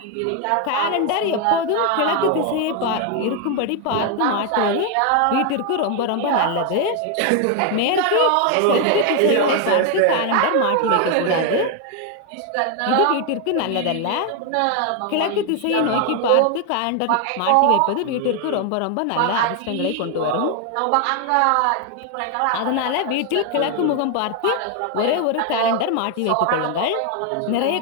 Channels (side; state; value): both; different; correlation 0.01